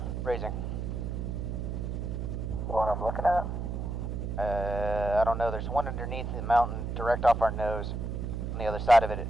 Raising. the one I'm looking at. I don't know, there's one underneath the mountain, direct off our nose. On the other side of it,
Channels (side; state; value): right; noise; hum, 3 dB below the sound